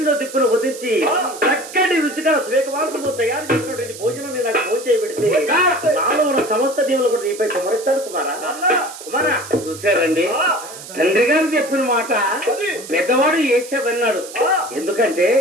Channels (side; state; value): right; noise; hiss, 14 dB below the sound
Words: దిప్పును వదించి చక్కటి రుచిగా స్వేకవాకులు తయారు చేసినటువంటి భోజనం నాకు భోజనం పెడితే నాలో ఉన్న సమస్త దీవులు కూడా నీపై కుమరిస్తాడు. కుమారా కుమారా చూసారండి తండ్రి గారు చెప్పిన మాట పెద్దవాడు చేసావన్నాడు. ఎందుకంటే